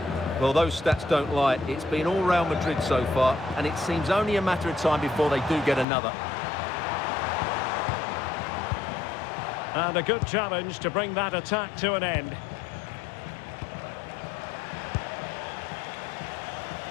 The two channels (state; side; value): drops out; right; at 5.9 s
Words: Well, those stats don't lie. It's been all Real Madrid so far, and it seems only a matter of time before they do get another. And a good challenge to bring that attack to an end.